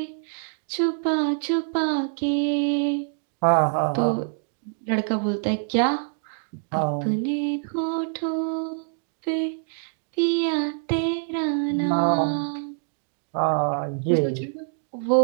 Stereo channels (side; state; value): left; silent; 62 dB below the other